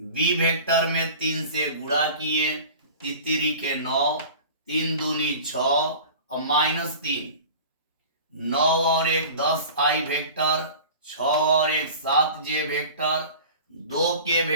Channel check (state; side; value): inverted; both; correlation -0.39